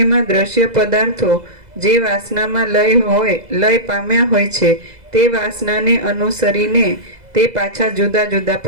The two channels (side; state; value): left; late; 2.0 ms